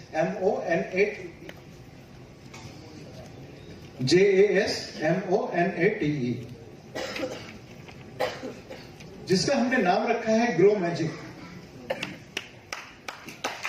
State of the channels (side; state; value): both; identical; correlation 1.00